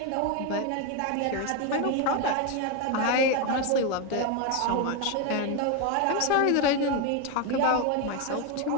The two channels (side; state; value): both; different; correlation 0.02